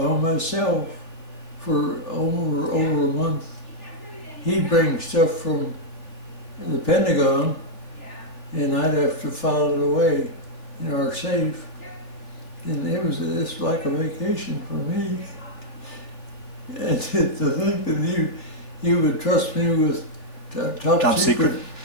myself for over a month. He'd bring stuff from the Pentagon, and I'd have to file it away in our safe. And it's like a vacation for me. And to think that he would trust me with top secret,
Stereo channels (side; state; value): right; late; 3.3 ms